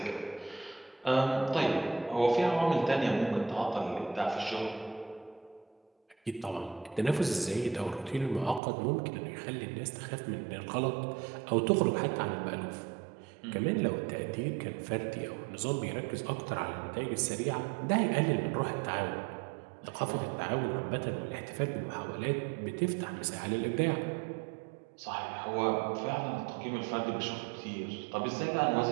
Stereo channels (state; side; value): drops out; left; at 8.6 s